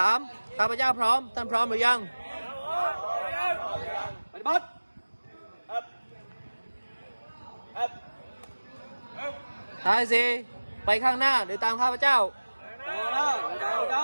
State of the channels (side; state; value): both; inverted; correlation -1.00